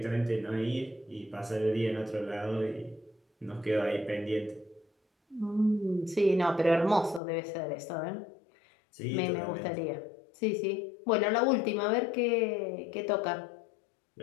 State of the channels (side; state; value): right; drops out; at 7.2 s